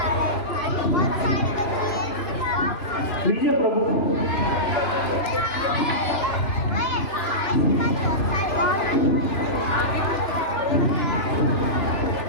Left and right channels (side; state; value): right; late; 3.0 ms